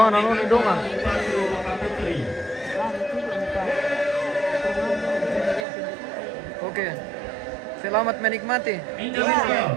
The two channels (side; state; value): left; drops out; at 5.7 s